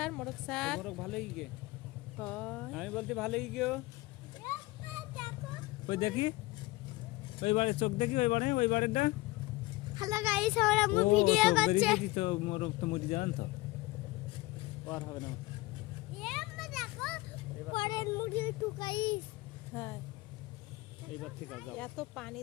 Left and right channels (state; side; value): quieter; right; 20.8 dB